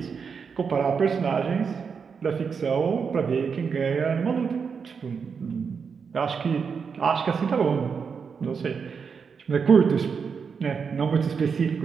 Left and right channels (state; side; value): quieter; left; 6.0 dB